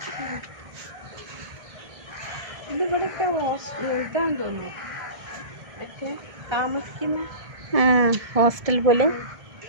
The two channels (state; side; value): late; left; 1.6 ms